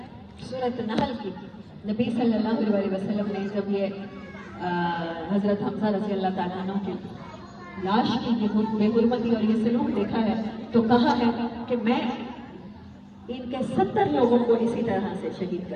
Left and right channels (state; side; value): identical; both; correlation 1.00